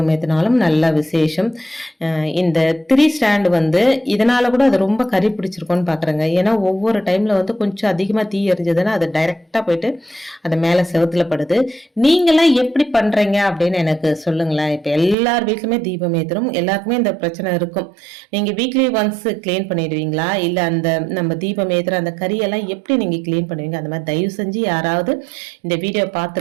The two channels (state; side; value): drops out; left; at 15.2 s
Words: ஏற்றினாலும் நல்ல விசேஷம். இந்த 3 ஸ்டாண்டு வந்து இதனால் கூட அது ரொம்ப கறி பிடிச்சிருக்கோன்னு பார்க்குறேங்க. ஏன்னா ஒவ்வொரு டைமில் வந்து கொஞ்சம் அதிகமாக தீ எரிஞ்சதுன்னா அது டைரெக்டாக போயிட்டு அது மேலே செவுத்தில் படுது. நீங்களாம் எப்படி பண்ணுறீங்க அப்படின்னு எனக்கு சொல்லுங்களேன். இப்போ எல்லார் வீட்லையுமே தீபம் ஏற்றுறோம். எல்லாருக்குமே இந்த பிரச்சனை இருக்கும். நீங்கள் வீக்லி ஒன்ஸ் க்ளீன் பண்ணிடுவீங்களா? இல்லை அந்த நம்ம தீபம் ஏற்றுற அந்த கறியெல்லாம் எப்படி நீங்கள் க்ளீன் பண்ணுவீங்க? அந்த மாதிரி தயவு செஞ்சு யாராவது இந்த வீடியோ